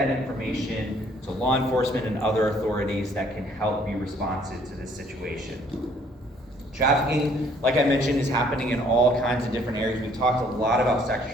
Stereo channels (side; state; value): both; normal; correlation 0.61